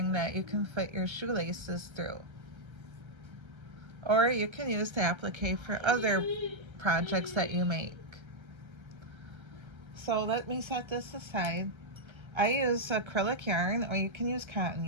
that you can fit your shoelaces through. Or you can use the applique for other projects that you make. So let me set this aside. I use acrylic yarn, or you can use cotton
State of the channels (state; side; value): late; left; 1.3 ms